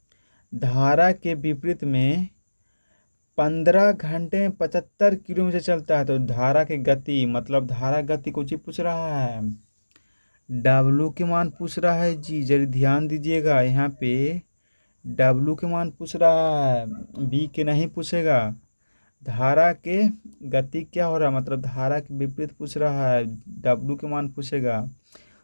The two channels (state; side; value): inverted; both; correlation -1.00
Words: 15 घंटे में 75 किलोमीटर चलता है। तो धारा की गति मतलब धारा गति कुछ ही पूछ रहा है, डब्लू के मान पूछ रहा है जी, जरा ध्यान दीजिएगा यहाँ पे। डब्लू के मान पूछ रहा है, बी के नहीं पूछेगा। धारा के गति क्या हो रहा है, मतलब धारा के विपरीत पूछ रहा है, डब्लू के मान पूछेगा।